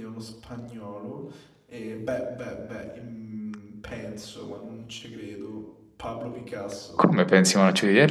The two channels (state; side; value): identical; both; correlation 1.00